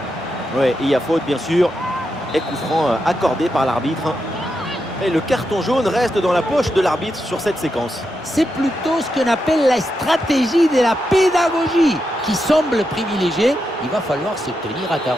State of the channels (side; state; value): both; normal; correlation 0.85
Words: Ouais, il y a faute bien sûr. Et coup franc accordé par l'arbitre. Et le carton jaune reste dans la poche de l'arbitre sur cette séquence. C'est plutôt ce qu'on appelle la stratégie de la pédagogie qui semble privilégiée. Il va falloir se tenir à